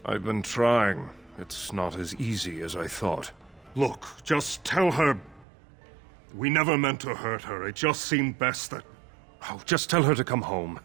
I've been trying. It's not as easy as I thought. Look, just tell her... We never meant to hurt her. It just seemed best that... Oh, just tell her to come home.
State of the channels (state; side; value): drops out; left; at 5.5 s